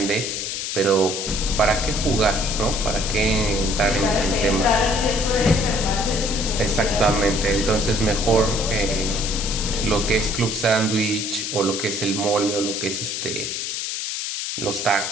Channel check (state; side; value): noise; left; hiss, 4 dB below the sound